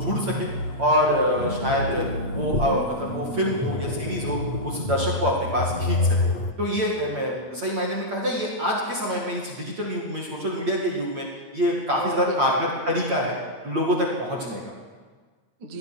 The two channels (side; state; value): left; late; 8.7 ms